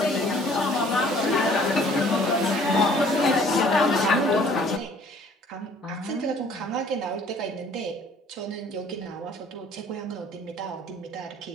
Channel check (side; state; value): both; normal; correlation 0.56